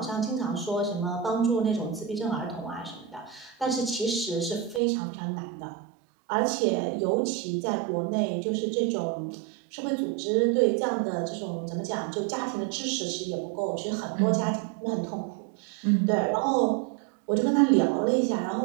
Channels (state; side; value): drops out; left; at 4.8 s